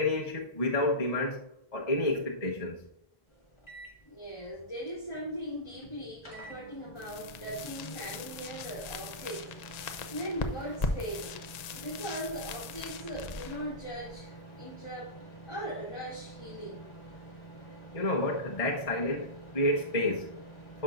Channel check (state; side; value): late; right; 1.8 ms